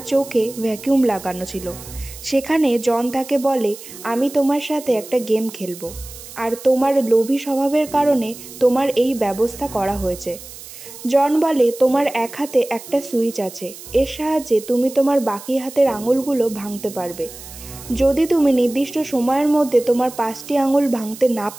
চোখে ভ্যাকিউম লাগানো ছিল। সেখানে জন তাকে বলে, আমি তোমার সাথে একটা গেম খেলবো, আর তোমার লোভী স্বভাবের কারণে তোমার এই ব্যবস্থা করা হয়েছে। জন বলে, তোমার এক হাতে একটা সুইচ আছে, এর সাহায্যে তুমি তোমার বাকি হাতের আঙুলগুলো ভাঙতে পারবে। যদি তুমি নির্দিষ্ট সময়ের মধ্যে তোমার 5টি আঙুল ভাঙতে না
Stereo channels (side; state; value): right; noise; hiss, 15 dB below the sound